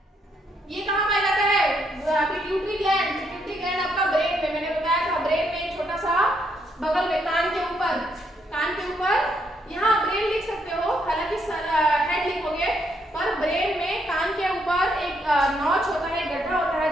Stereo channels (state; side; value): normal; both; correlation 0.74